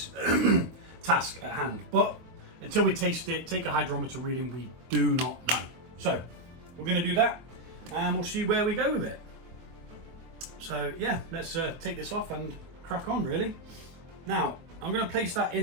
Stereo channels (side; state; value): left; late; 24 ms